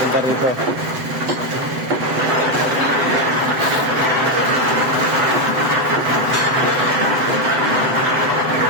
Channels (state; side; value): late; left; 7.9 ms